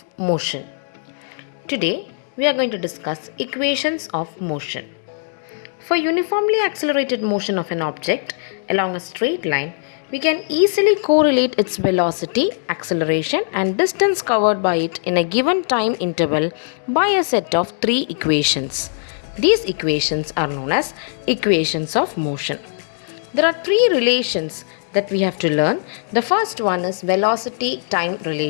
motion. Today we are going to discuss equations of motion. For uniformly accelerated motion of an object along a straight line, we can easily correlate its velocity, acceleration and distance covered by it in a given time interval by a set of three equations. These equations are known as equations of motion. There are three relations that we have to learn. The first one is velocity-time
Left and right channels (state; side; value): silent; right; digital silence